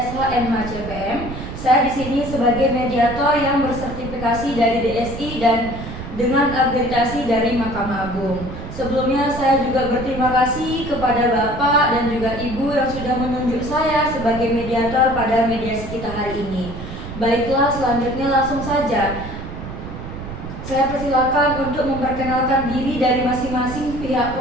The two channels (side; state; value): right; noise; rumble, 9 dB below the sound